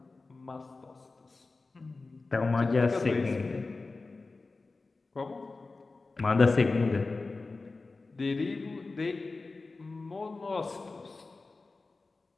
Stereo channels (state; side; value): quieter; right; 3.7 dB